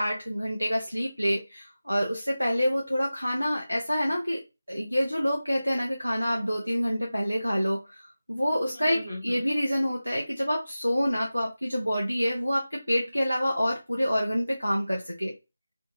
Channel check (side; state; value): both; inverted; correlation -0.96